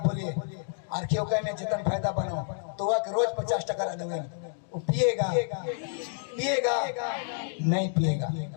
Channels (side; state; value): right; silent; digital silence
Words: आर्थियों में जितना फायदा बनाओ, तो वह रोज 50 टका दूंगे, वो पिएगा नहीं पिएगा।